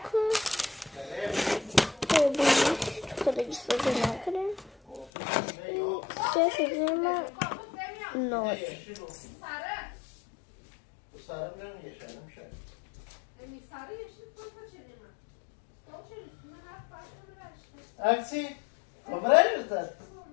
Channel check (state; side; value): drops out; right; at 5.1 s